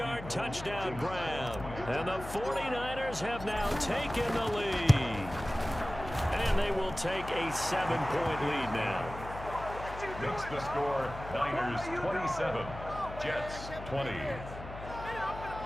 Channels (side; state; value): left; noise; hum, 11 dB below the sound